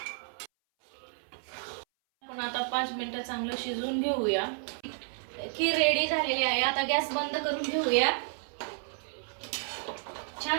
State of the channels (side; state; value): left; silent; 57 dB below the other